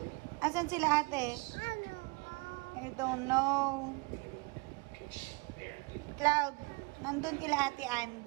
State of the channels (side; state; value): left; quieter; 27.5 dB